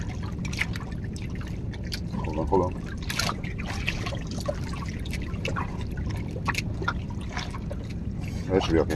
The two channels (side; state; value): both; identical; correlation 1.00